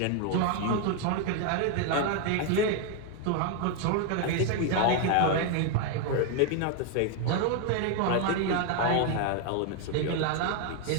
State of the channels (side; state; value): both; different; correlation 0.01